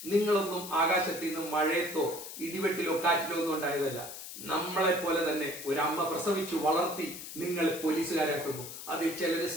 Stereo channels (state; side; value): noise; left; hiss, 10 dB below the sound